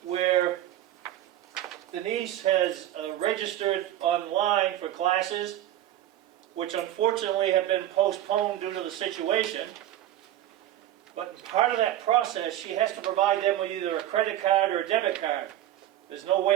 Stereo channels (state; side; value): quieter; left; 12.8 dB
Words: where Denise has registered online for classes, which unfortunately have been postponed due to the situation. But in part of that process, she has to provide them with either a credit card or a debit card. There's no